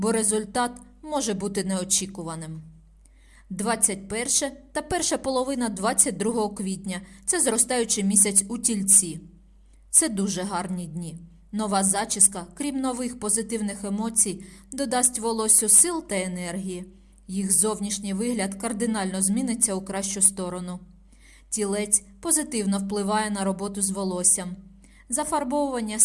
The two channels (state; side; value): identical; both; correlation 1.00